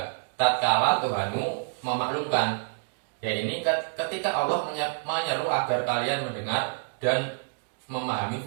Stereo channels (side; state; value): left; silent; digital silence